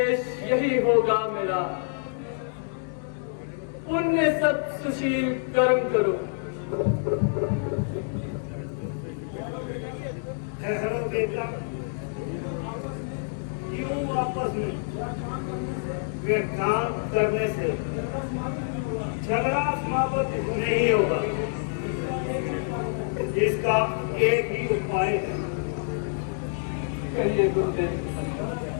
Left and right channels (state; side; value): silent; right; digital silence